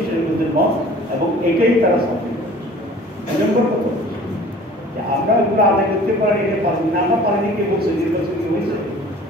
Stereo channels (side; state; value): both; normal; correlation 0.47